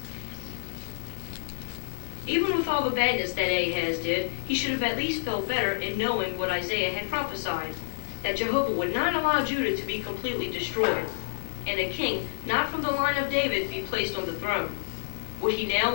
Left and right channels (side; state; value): right; silent; 56 dB below the other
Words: Even with all the badness that Ahaz did, he should have at least felt better in knowing what Isaiah had prophesied, that Jehovah would not allow Judah to be completely destroyed, and a king not from the line of David be placed on the throne. Would he now